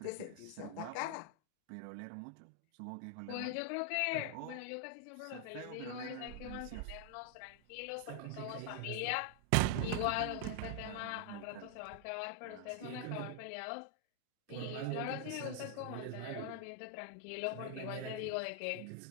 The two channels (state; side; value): different; both; correlation 0.00